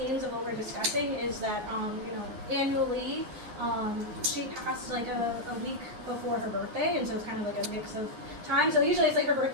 of what we're discussing is that you know, annually she passed like a week before her birthday, and so it's kind of like a mix of time. So usually it's like her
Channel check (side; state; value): left; late; 9.6 ms